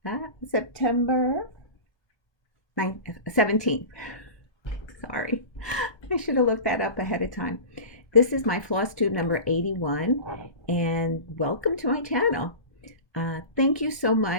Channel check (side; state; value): right; late; 1.2 ms